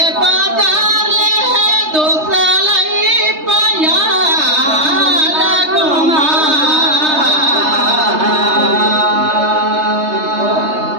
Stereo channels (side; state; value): left; late; 3.3 ms